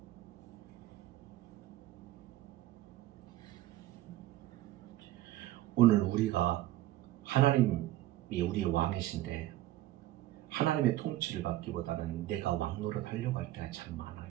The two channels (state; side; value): quieter; left; 15.2 dB